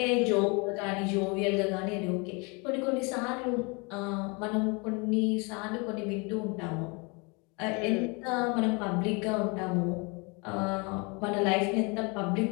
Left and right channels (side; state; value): right; quieter; 30.3 dB